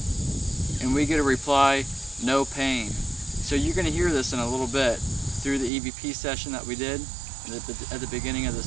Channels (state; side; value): drops out; left; at 5.7 s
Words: and we get a reply, no pain. So you're going to hear this in a little bit through the EVP session that we did at the beginning of